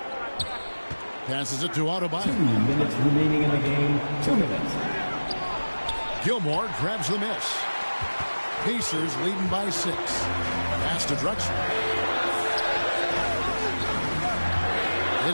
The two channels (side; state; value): both; inverted; correlation -1.00